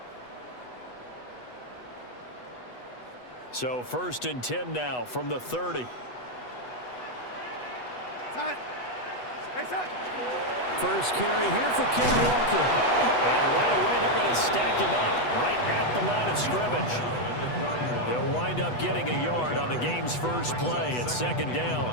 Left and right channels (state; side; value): late; right; 8.1 ms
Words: So 1st and 10 now from the 30. First carry here for Ken Walker. And right away they're going to stack him up right at the line of scrimmage. They'll wind up getting a yard on the game's first play at 2nd down.